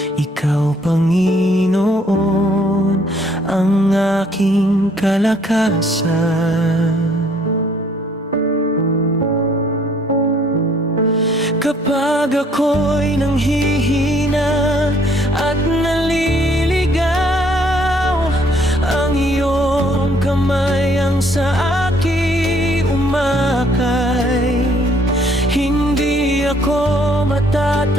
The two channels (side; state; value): both; normal; correlation 0.63